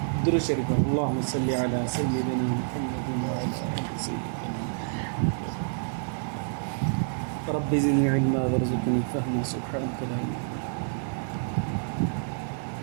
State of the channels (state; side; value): silent; left; digital silence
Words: درود شريف. اللهم صل على سيدنا محمد وعلى آل سيدنا رب زدني علما وارزقني فهما سبحانك لا علم